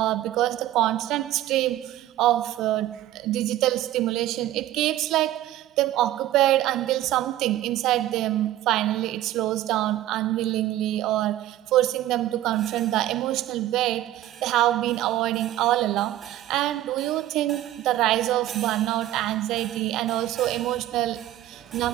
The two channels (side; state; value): left; quieter; 14.0 dB